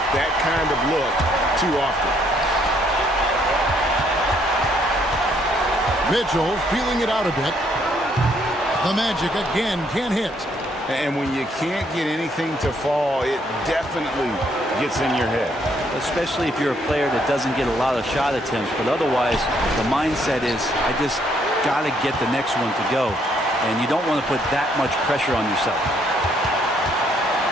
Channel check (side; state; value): both; normal; correlation 0.69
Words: that kind of look too often. Mitchell feeling it out a bit. The Magic again can't hit. And when you can't get anything to fall, it definitely gets in your head. Especially if you're a player that doesn't get a lot of shot attempts. But otherwise, the mindset is, I just got to get the next one to go. And you don't want to put that much pressure on yourself.